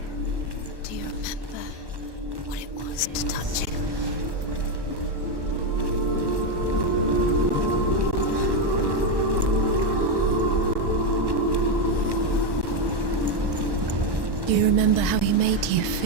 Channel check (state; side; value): late; left; 1.1 ms